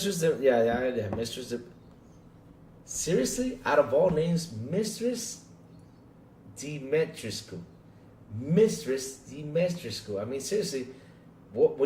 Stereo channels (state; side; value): identical; both; correlation 1.00